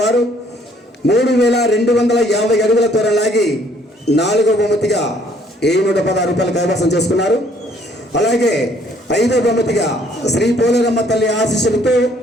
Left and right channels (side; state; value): both; normal; correlation 0.62